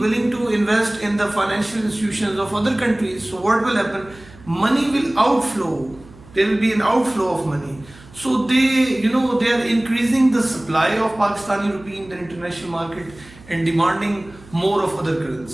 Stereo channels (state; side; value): noise; right; hum, 22 dB below the sound